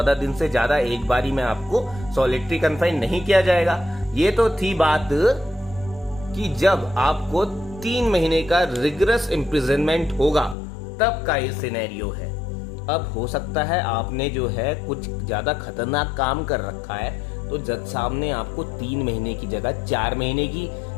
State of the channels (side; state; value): right; drops out; at 10.6 s